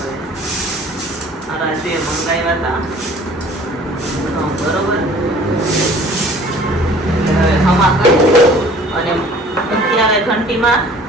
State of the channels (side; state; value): both; normal; correlation 0.50